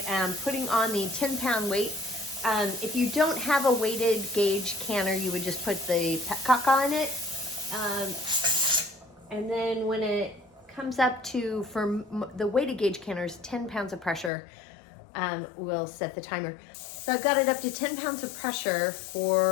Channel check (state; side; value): drops out; right; at 14.3 s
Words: am putting on the 10-pound weight. If you don't have a weighted gauge canner, you would just put the petcock on it. And then when it comes up to, for the weighted gauge canners, 10 pounds of pressure, we'll set the timer. So I've got it up to 10 pounds of pressure